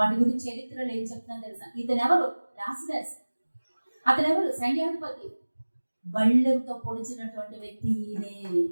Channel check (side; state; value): both; inverted; correlation -1.00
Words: గురించి చరిత్రలో ఏం చెప్తున్నా తెలుసా? ఇతను ఎవరు? లాజరస్. అతను ఎవరు? సైన్యాధిపతి. బళ్ళెంతో పొడిచినటువంటి వ్యక్తి ఈయనే.